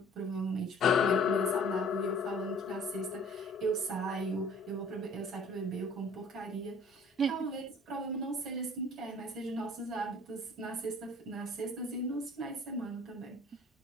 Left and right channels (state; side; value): normal; both; correlation 0.51